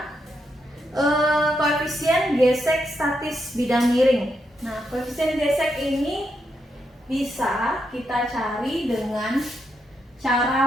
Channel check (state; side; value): normal; both; correlation 0.81